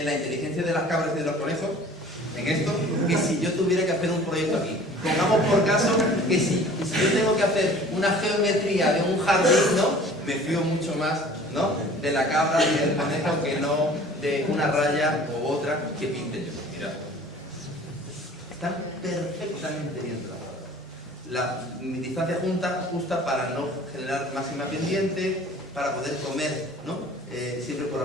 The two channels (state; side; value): normal; both; correlation 0.47